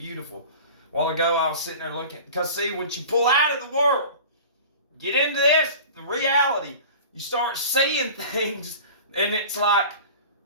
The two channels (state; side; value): inverted; both; correlation -0.38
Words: A while ago I was sitting there looking, because see, when you pull out of the world, get into this, the reality, you start seeing things, and it's like,